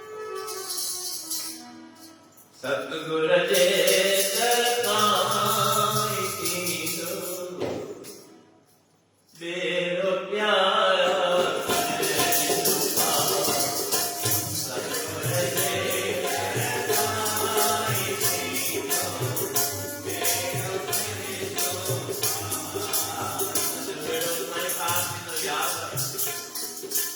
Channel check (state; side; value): identical; both; correlation 1.00